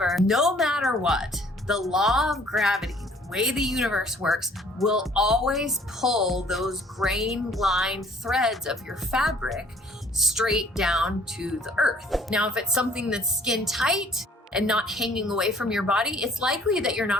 no matter what, the law of gravity, the way the universe works, will always pull those grain line threads of your fabric straight down to the earth. Now, if it's something that's skin tight and not hanging away from your body, it's likely that you're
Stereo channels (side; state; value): both; normal; correlation 0.57